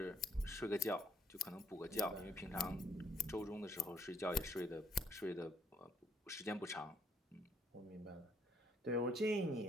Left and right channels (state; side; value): normal; both; correlation 0.68